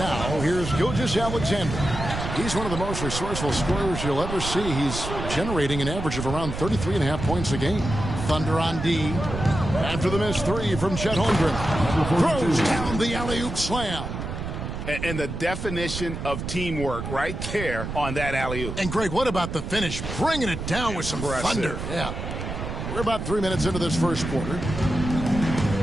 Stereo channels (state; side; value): noise; right; rumble, 6 dB below the sound